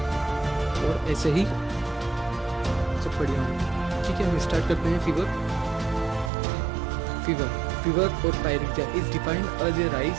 और ऐसे ही सब बढ़िया होंगे। ठीक है, हम स्टार्ट करते हैं। Fever or pyrexia is defined as a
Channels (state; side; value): drops out; left; at 6.3 s